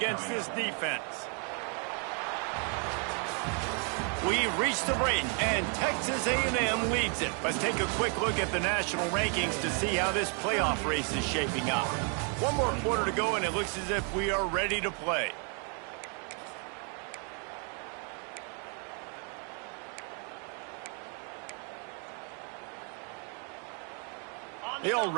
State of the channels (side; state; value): left; quieter; 38.9 dB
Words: this defense. We've reached the break, and Texas A&M leads it. Let's take a quick look at the national rankings to see how this playoff race is shaping up. One more quarter to go, and it looks as if we are ready to play. They